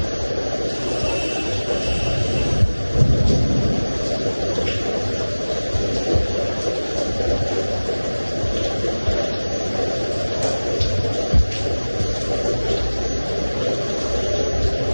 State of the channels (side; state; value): both; inverted; correlation -1.00